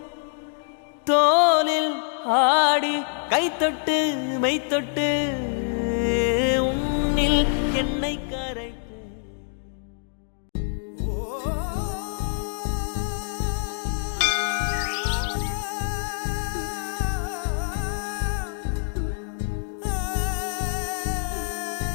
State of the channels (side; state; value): right; silent; digital silence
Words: தோலில் ஆடி கைத்தொட்டு மெய்த்தொட்டு உன்னில் என்னை கரைப்பேன்.